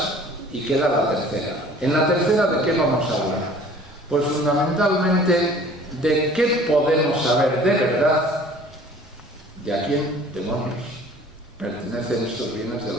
y queda la tercera. En la tercera, ¿de qué vamos a hablar? Pues fundamentalmente de qué podemos saber de verdad de a quién, demonios, pertenecen estos bienes de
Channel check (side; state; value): both; normal; correlation 0.49